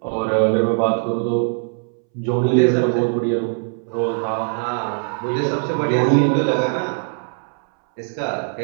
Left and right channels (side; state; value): left; silent; 65 dB below the other